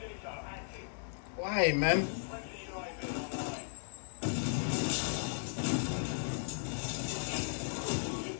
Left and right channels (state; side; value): silent; right; digital silence